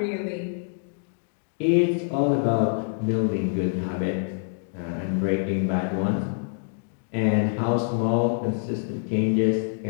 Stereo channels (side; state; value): right; silent; digital silence